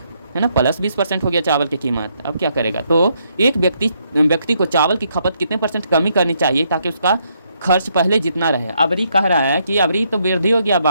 ना, प्लस 20% हो गया चावल की कीमत, अब क्या करेगा, तो एक व्यक्ति को चावल की खपत कितने % कमी करनी चाहिए ताकि उसका खर्च पहले जितना रहे। अबरी कह रहा है कि अबरी तो वृद्धि हो गया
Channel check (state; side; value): inverted; both; correlation -0.74